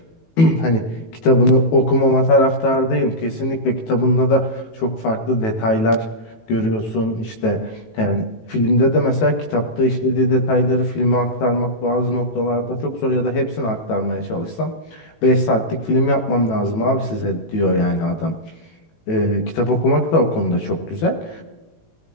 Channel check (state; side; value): late; right; 18 ms